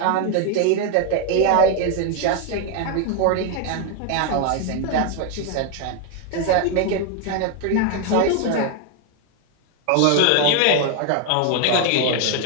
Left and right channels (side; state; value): both; different; correlation 0.01